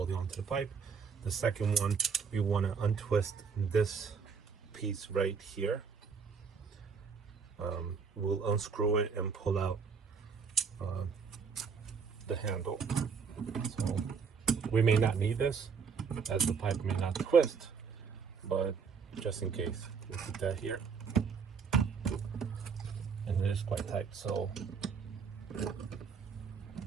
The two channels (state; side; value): quieter; left; 5.8 dB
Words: on to the pipe. The second one, you want to untwist this piece right here. We'll unscrew it and pull out the handle. So we may not need this, as the pipe may not twist, but just in case, we'll put that here. And it is quite tight, so